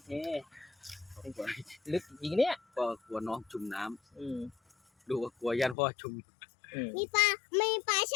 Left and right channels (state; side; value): drops out; right; at 5.8 s